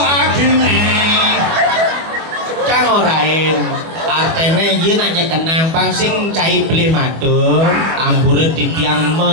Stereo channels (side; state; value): left; late; 25 ms